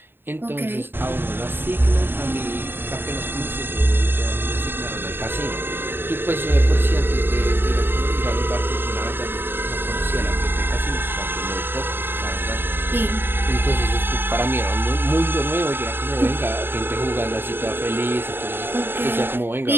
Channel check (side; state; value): left; late; 0.10 ms